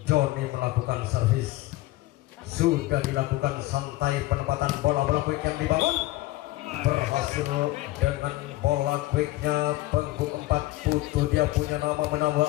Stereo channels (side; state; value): right; quieter; 17.9 dB